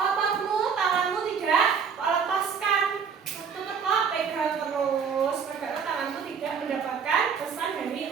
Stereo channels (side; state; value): left; quieter; 6.4 dB